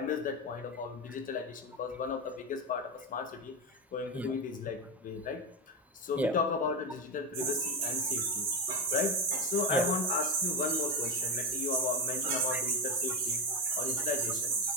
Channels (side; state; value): both; normal; correlation 0.12